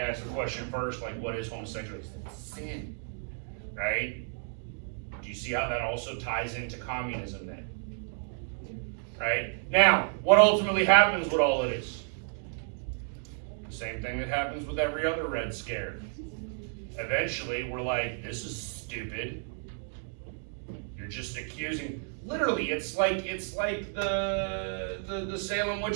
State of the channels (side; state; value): left; silent; 57 dB below the other